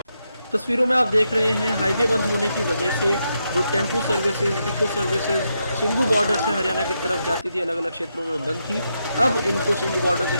तस्वीरों में आप देख रहे हैं हाईवे बंद होने की वजह से जो tempo services, eco services Singhu border से हरियाणा की तरफ जाती थी, अलग अलग क्षेत्रों में बंद थी, अब इनको सिंघू बॉर्डर से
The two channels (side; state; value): both; inverted; correlation -0.83